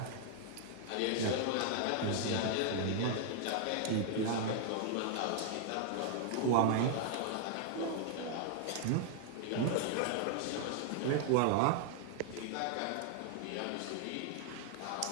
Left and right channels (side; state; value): both; different; correlation 0.00